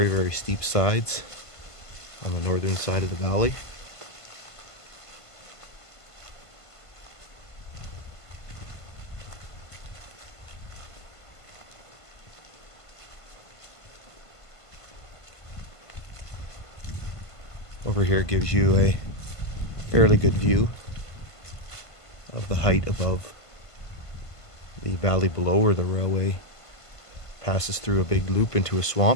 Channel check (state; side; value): late; right; 1.5 ms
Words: very steep sides on the northern side of the valley. Over here gives you a fairly good view of the height above the valley below, where the railway passes through a big loop into a